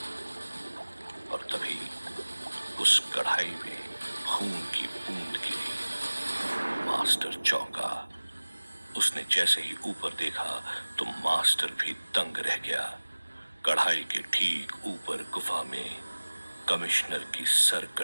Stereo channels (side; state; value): both; inverted; correlation -1.00